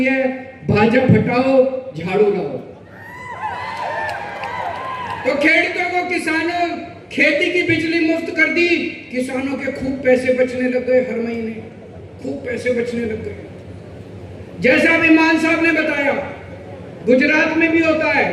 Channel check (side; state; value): both; identical; correlation 1.00